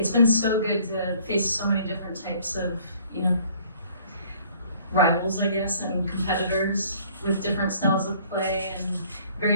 been so good to face so many different types of, rivals, I guess, and competitors with different styles of play and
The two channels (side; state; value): both; inverted; correlation -0.57